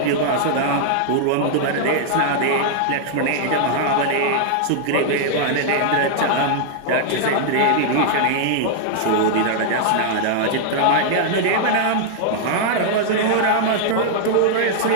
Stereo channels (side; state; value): both; different; correlation -0.01